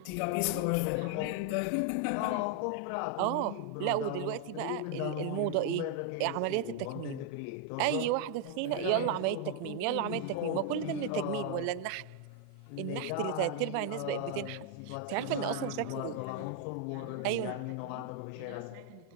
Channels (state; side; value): different; both; correlation 0.00